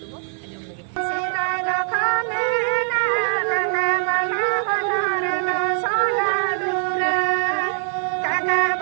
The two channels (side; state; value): left; silent; 55 dB below the other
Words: ajom lagi sirala khale na na bala banare na sola dura kaga